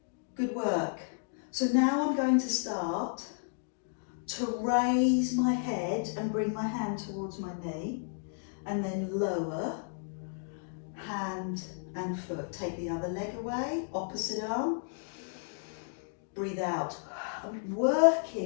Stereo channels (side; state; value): right; silent; digital silence